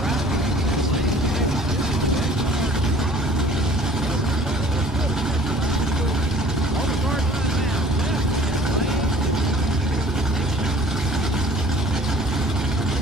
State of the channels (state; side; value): normal; both; correlation 0.50